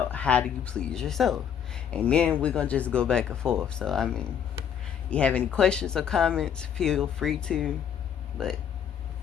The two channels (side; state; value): right; quieter; 8.4 dB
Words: how do you please yourself. And then we're gonna just go back and forth. So I mean, you have any questions or comments, feel free to. But